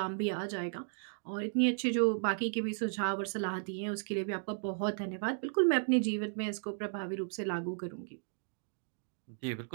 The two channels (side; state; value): left; silent; digital silence